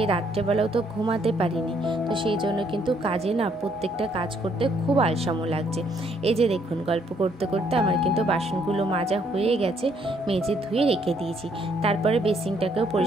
রাত্রেবেলাও তো ঘুমাতে পারিনি, তো সেই জন্য কিন্তু কাজে প্রত্যেকটা কাজ করতে খুব আলসামো লাগছে। এই যে দেখুন গল্প করতে করতে আমার কিন্তু বাসনগুলো মাজা হয়ে গেছে, মেজে ধুয়ে রেখে দিয়েছি। তারপরে বেসিনটাকেও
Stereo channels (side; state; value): both; normal; correlation 0.68